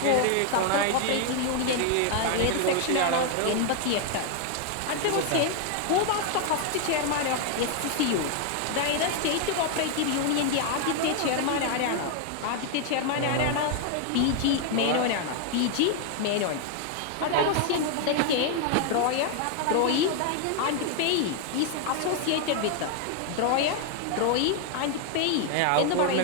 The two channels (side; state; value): both; different; correlation 0.00